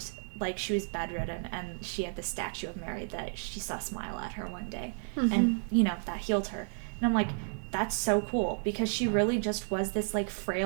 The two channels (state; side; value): silent; left; 56 dB below the other